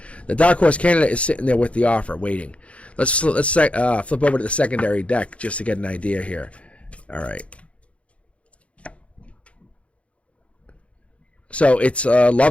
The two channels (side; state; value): right; late; 0.062 ms